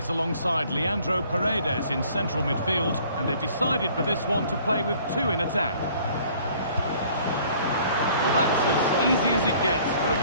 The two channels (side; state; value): both; inverted; correlation -0.55